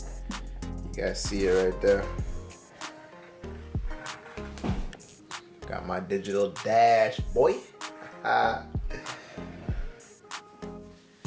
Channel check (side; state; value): both; identical; correlation 1.00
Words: guys see it right there. Got my digital dash, boy.